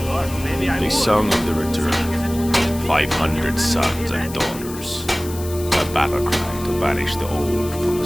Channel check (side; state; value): left; noise; hiss, 14 dB below the sound